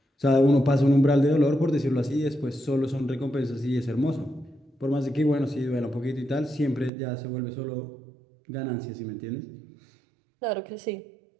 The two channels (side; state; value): left; drops out; at 6.9 s